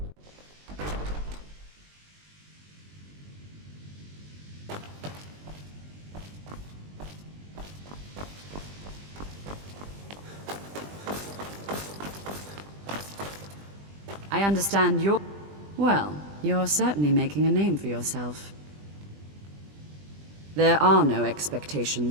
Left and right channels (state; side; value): late; left; 20 ms